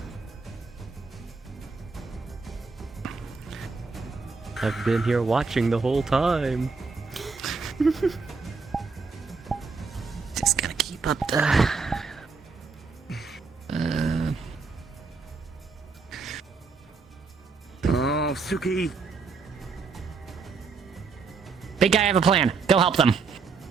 I've been here watching the whole time. Just gonna keep up the... Oh, Suki. Big guy, I have a plan. Go help them.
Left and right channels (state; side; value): quieter; left; 4.7 dB